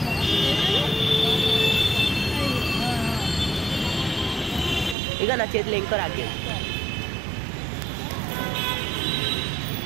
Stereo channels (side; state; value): left; drops out; at 5.0 s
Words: ఇక నా చేతిలో ఇంకో రాఖీ.